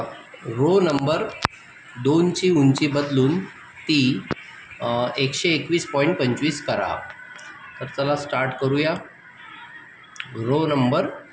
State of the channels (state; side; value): identical; both; correlation 1.00